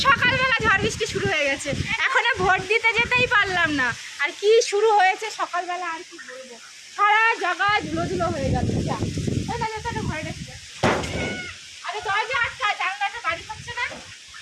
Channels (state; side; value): identical; both; correlation 1.00